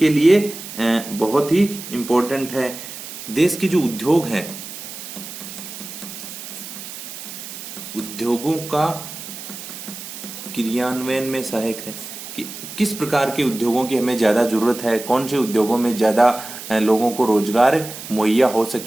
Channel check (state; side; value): noise; right; hiss, 11 dB below the sound